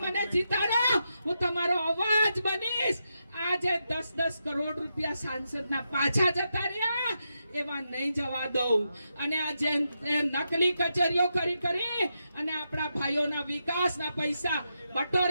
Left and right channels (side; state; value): both; inverted; correlation -0.85